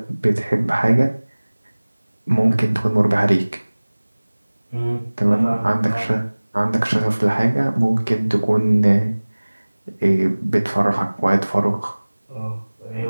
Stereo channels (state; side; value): inverted; both; correlation -1.00